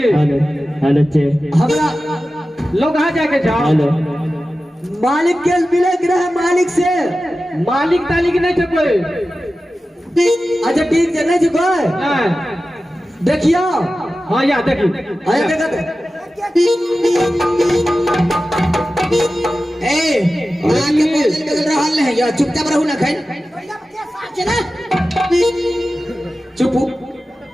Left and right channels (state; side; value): normal; both; correlation 0.94